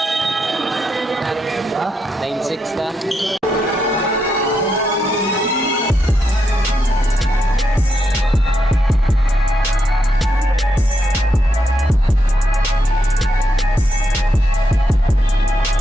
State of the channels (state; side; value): normal; both; correlation 0.82